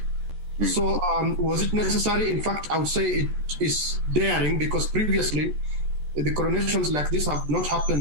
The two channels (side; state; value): left; late; 14 ms